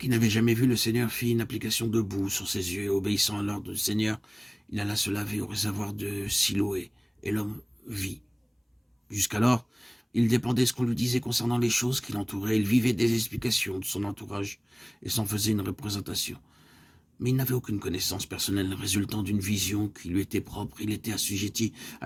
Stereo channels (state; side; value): identical; both; correlation 1.00